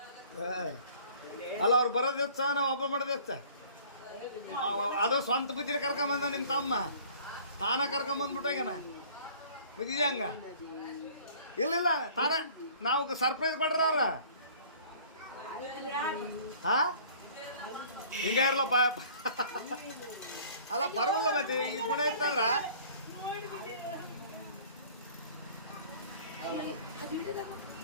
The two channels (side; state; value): both; inverted; correlation -0.50